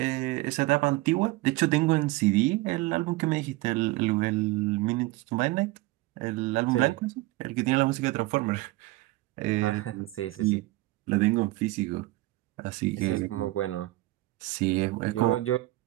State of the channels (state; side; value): quieter; left; 19.5 dB